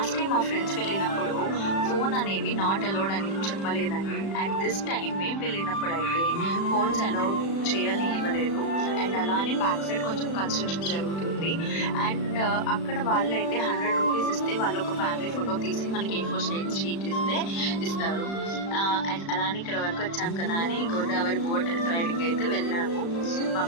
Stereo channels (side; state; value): right; late; 36 ms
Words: టైం మా ఫ్రెండ్స్ వెళ్ళినప్పుడు ఫోన్ అనేవి నాట్ అలౌడ్ అని చెప్పలేదండి. అండ్ దిస్ టైం మేము వెళ్ళినప్పుడు అయితే ఫోన్స్ అలౌడ్ చేయనివ్వలేదు. అండ్ అలానే బ్యాక్ సైడ్ కొంచెం కన్స్ట్రక్షన్ జరుగుతుంది. అండ్ అక్కడ వాళ్ళు అయితే 100 రూపీస్ ఇస్తే వాళ్ళు ఒక ఫ్యామిలీ ఫోటో తీసి మనకి A4 షీట్ ఇస్తారు. అండ్ అలానే ఇక్కడ వరకు వచ్చాం కదా అని గోదావరి బోట్ రైడింగ్ అయితే వెళ్ళాము మా